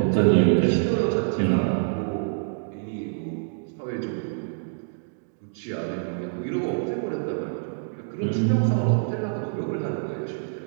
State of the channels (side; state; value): left; silent; digital silence